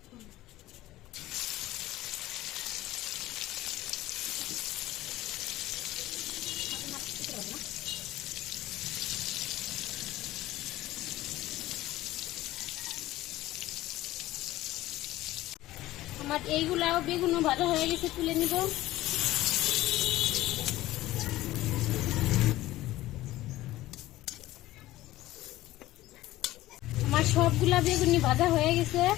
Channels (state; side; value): quieter; right; 16.3 dB